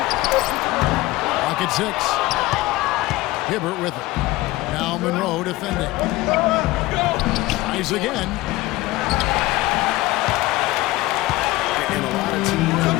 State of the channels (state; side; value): quieter; right; 18.9 dB